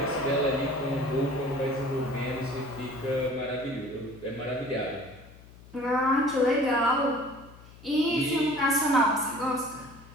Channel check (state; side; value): noise; left; hum, 21 dB below the sound